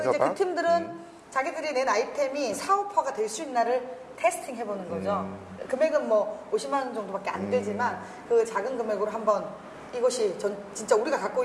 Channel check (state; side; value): identical; both; correlation 1.00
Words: 협약? 그 팀들은 자기들이 낸 아이템이 사업화가 될 수 있나를 테스팅 해보는 거죠. 금액은 뭐 50만 원 정도밖에 안 되지만 그 작은 금액으로 한번 이것이 진짜 우리가 갖고